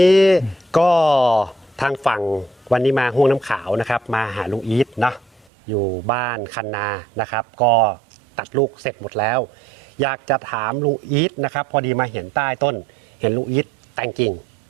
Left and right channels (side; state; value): left; drops out; at 5.5 s